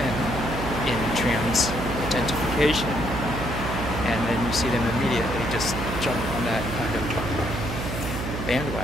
in trans identification, and then you see them immediately just jump on that kind of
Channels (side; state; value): right; noise; hum, 4 dB below the sound